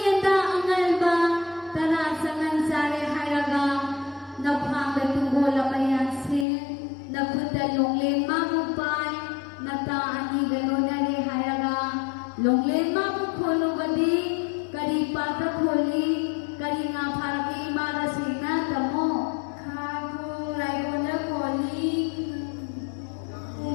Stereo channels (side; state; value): right; drops out; at 6.5 s